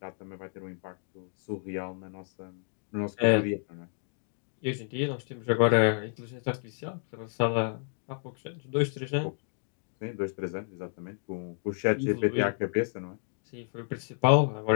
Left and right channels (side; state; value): right; silent; 57 dB below the other